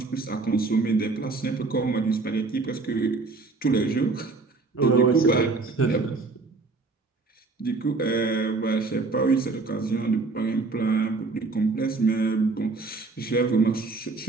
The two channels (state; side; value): quieter; left; 3.8 dB